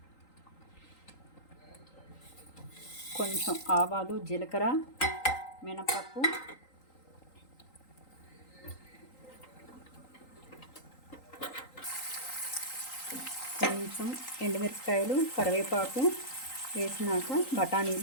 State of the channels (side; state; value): right; late; 3.8 ms